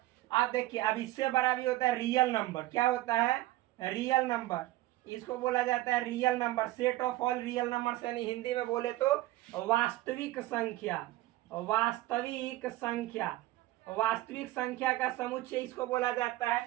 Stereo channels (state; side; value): quieter; left; 16.9 dB